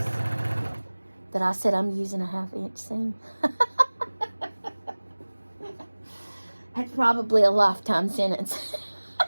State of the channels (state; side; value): inverted; both; correlation -1.00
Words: that I said I'm using a 1/2 inch seam. That's probably a lifetime sentence.